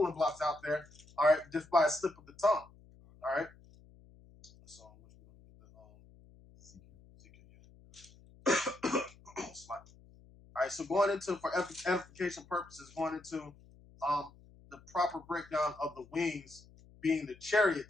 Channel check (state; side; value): noise; left; hum, 24 dB below the sound